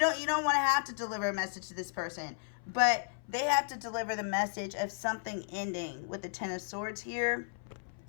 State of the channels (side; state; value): right; silent; 55 dB below the other